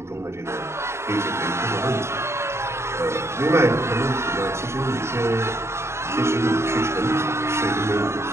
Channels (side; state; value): left; late; 0.13 ms